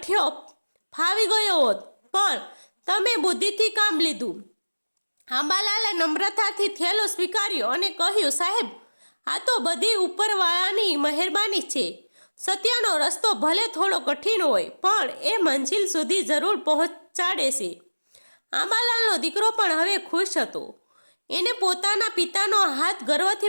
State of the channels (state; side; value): inverted; both; correlation -1.00